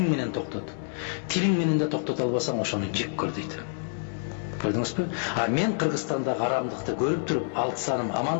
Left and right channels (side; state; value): right; silent; digital silence